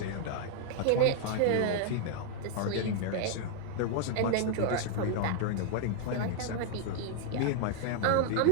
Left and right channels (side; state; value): both; different; correlation 0.00